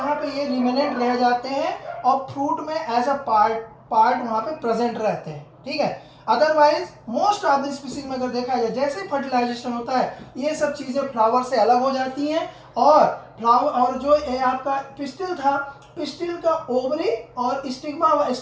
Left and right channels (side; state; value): both; identical; correlation 1.00